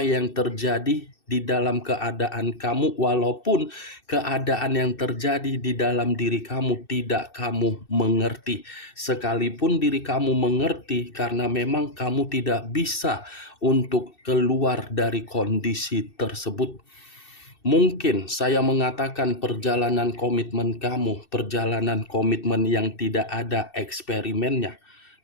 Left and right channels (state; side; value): late; right; 2.6 ms